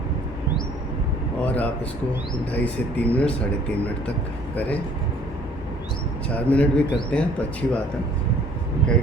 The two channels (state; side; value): normal; both; correlation 0.56